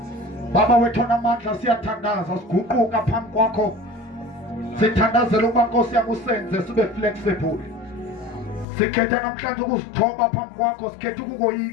Baba wethu onamandla siyathandaza siguquka phambi kwakho. Sithandazela ukuba Nkosi yami usenze sibe flexible. Sikhetha namhlanje ukuzithoba phambi kwakho, sikhetha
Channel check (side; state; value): right; drops out; at 8.7 s